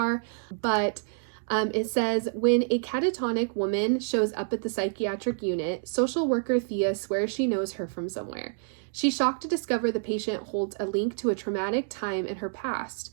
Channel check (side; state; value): left; silent; digital silence